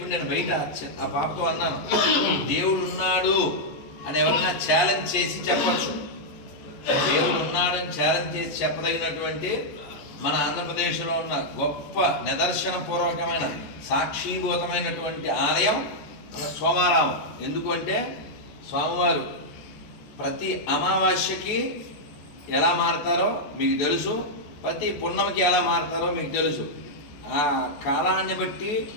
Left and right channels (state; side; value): late; right; 14 ms